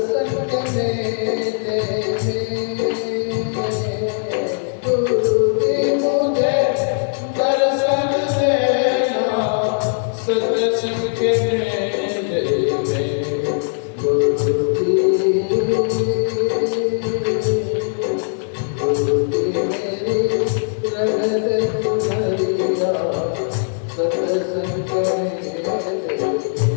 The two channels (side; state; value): right; silent; digital silence